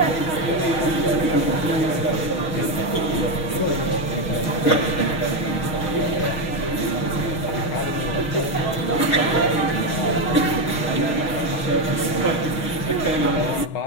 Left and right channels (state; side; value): late; right; 6.4 ms